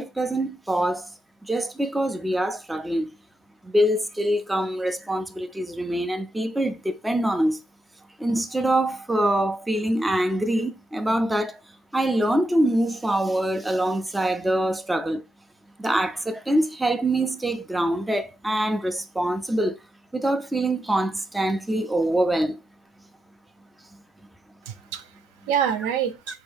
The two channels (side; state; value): both; normal; correlation 0.86